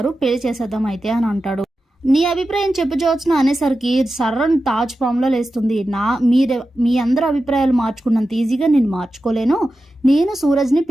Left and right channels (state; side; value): normal; both; correlation 0.92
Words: పెళ్లి చేసేద్దాం అయితే అని అంటాడు. నీ అభిప్రాయం చెప్పు జ్యోత్స్న అనేసరికి సర్రన్ తాజ్ పాములో లేస్తుంది. మీ అందరి అభిప్రాయాలు మార్చుకున్నంత ఈజీగా నేను మార్చుకోలేను, నేను సూరజ్ని